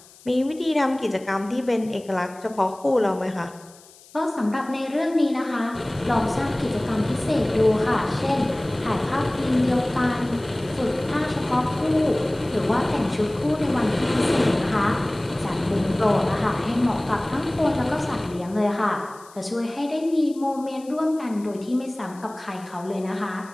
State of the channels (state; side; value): noise; left; hiss, 24 dB below the sound